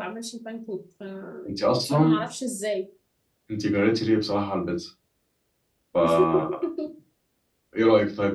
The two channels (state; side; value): identical; both; correlation 1.00